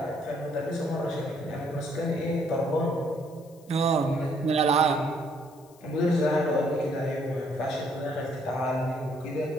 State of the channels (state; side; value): noise; left; hiss, 28 dB below the sound